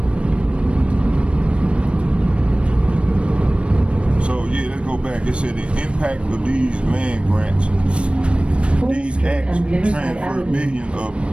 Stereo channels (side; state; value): left; late; 0.059 ms